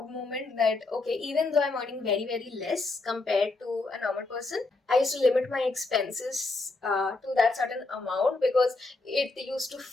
moment that, okay, even though I'm earning very less compared to a normal person, I used to limit my expenses to that certain amount because it used to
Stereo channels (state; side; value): quieter; right; 3.4 dB